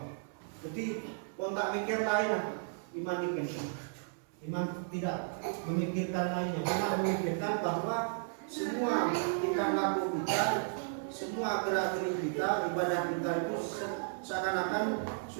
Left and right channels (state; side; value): silent; left; 55 dB below the other